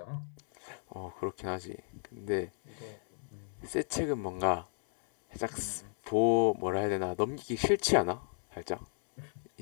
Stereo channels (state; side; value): silent; right; 55 dB below the other